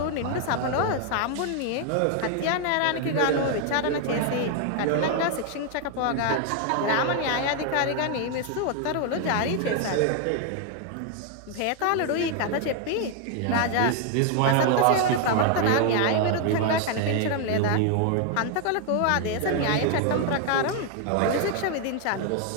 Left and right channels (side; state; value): both; different; correlation 0.00